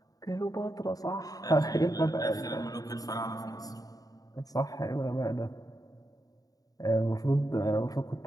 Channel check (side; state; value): right; late; 0.18 ms